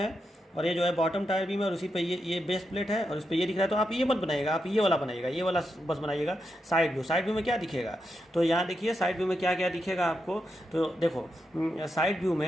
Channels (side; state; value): both; normal; correlation 0.85